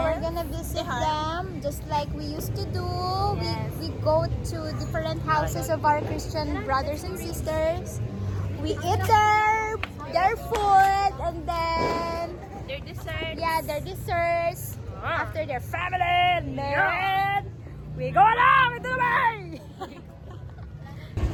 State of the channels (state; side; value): identical; both; correlation 1.00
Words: we're gonna visit them just like we used to do. Yes. We go to different houses of our Christian brothers and sisters. We eat their food and then Their dessert. yeah, their desserts after their family and then we go along into the way.